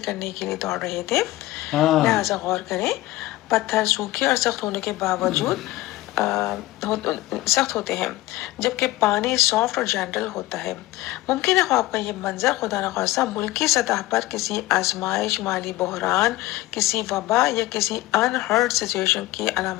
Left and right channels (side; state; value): right; quieter; 17.6 dB